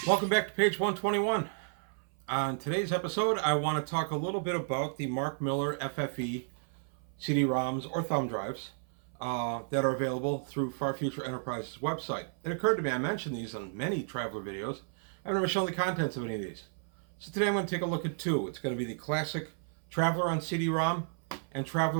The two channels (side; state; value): left; silent; 56 dB below the other